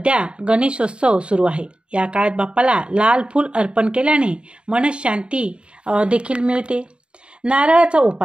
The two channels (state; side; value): late; left; 0.054 ms